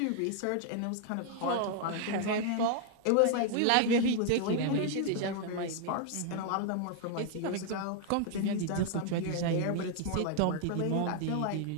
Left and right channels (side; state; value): both; different; correlation 0.00